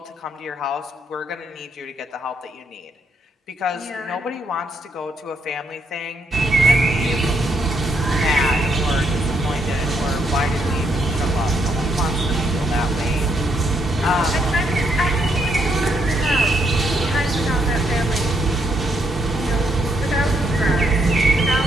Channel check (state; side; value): normal; both; correlation 0.75